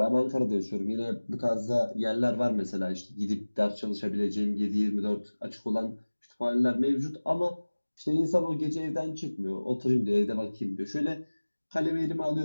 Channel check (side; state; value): both; inverted; correlation -1.00